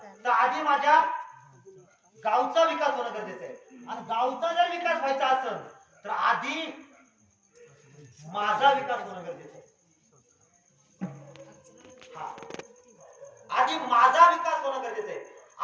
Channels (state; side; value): identical; both; correlation 1.00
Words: तर आधी माझ्या गावचा विकास होणं गरजेचं आहे. आणि गावचा जर विकास व्हायचा असेल तर आधी माझा विकास होणं गरजेचं आहे. हा आधी माझा विकास होणं गरजेचं आहे.